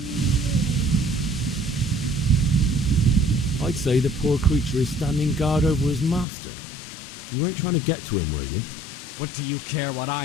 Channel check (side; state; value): right; drops out; at 6.2 s